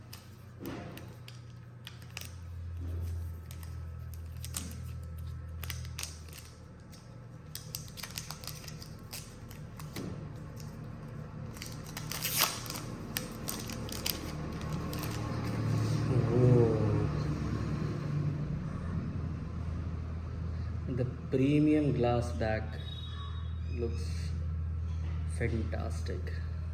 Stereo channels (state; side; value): identical; both; correlation 1.00